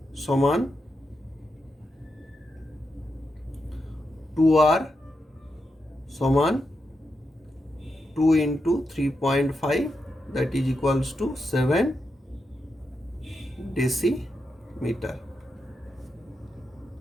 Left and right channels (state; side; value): normal; both; correlation 0.86